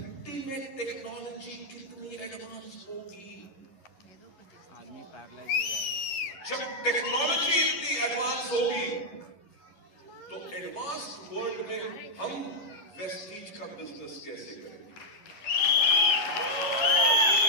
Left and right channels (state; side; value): late; right; 11 ms